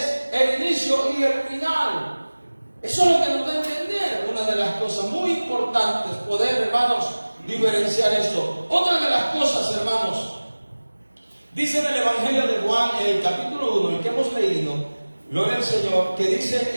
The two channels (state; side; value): inverted; both; correlation -1.00